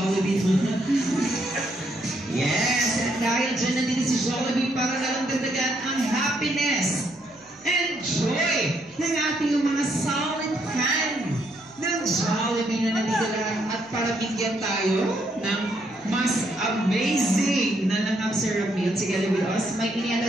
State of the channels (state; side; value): noise; right; hum, 30 dB below the sound